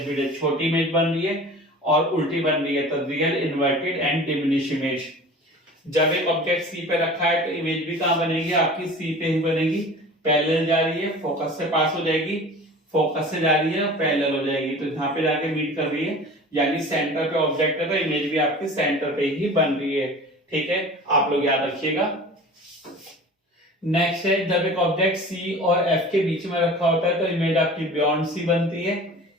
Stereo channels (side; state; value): both; normal; correlation 0.40